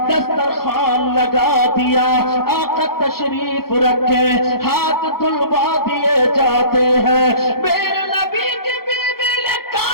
दस्तरखान लगा दिया, आका तशरीफ रखे, हाथ धुलवा दिए जाते हैं। मेरे नबी की बीबी ने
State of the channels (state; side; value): late; right; 0.94 ms